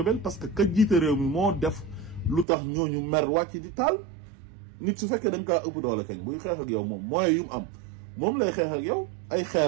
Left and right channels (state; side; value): drops out; left; at 2.5 s